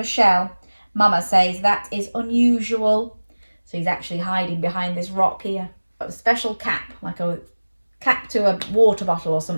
shell. Mama says that is unusual. So he's actually hiding behind this rock here. Got a special cap, like a cap to a water bottle or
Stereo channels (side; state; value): both; inverted; correlation -1.00